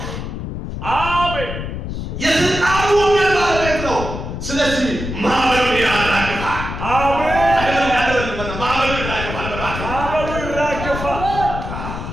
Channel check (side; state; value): left; noise; rumble, 6 dB below the sound